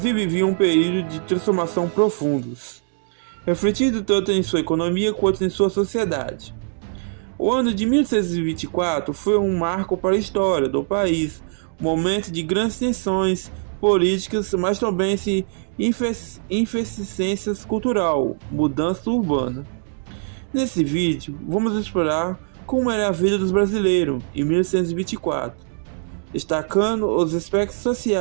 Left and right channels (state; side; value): silent; left; 64 dB below the other